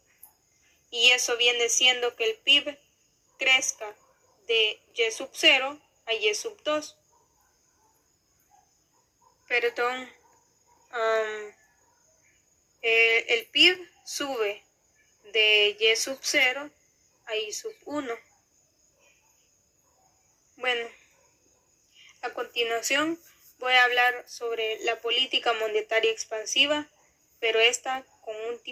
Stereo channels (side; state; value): both; identical; correlation 1.00